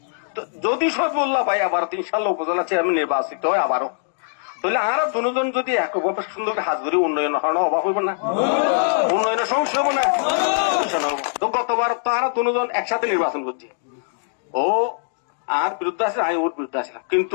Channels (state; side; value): silent; right; digital silence